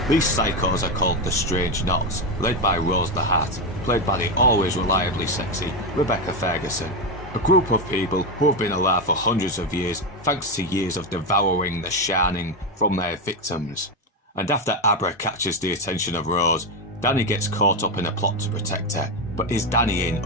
These psychos are called the Strange Knots, led by Rose the Hat, played by the always reliably sexy Rebecca Ferguson. A group of people who have been alive for hundreds of years thanks to years of devouring the shining from their victims. And after Abra catches the attention of Rose, Danny gets caught up in a plot to protect her, but is Danny in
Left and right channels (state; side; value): normal; both; correlation 0.10